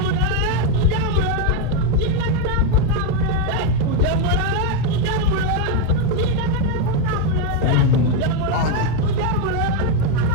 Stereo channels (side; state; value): both; different; correlation 0.02